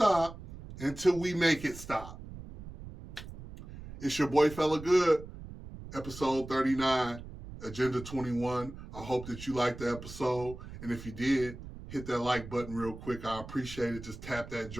until we make it stop. It's your boy Fellagood, episode 39, Agenda 21. I hope that you liked the episode. And if you did, hit that like button real quick. I appreciate it. Just tap that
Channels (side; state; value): right; noise; rumble, 13 dB below the sound